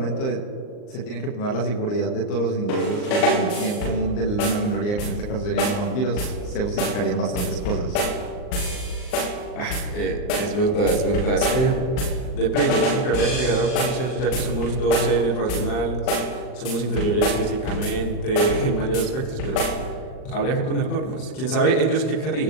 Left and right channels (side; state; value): right; late; 39 ms